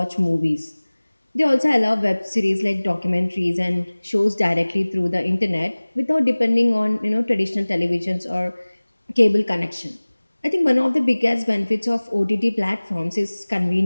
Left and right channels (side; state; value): both; inverted; correlation -1.00